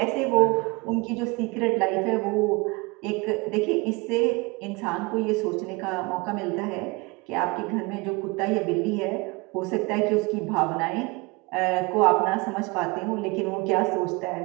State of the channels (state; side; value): quieter; left; 26.4 dB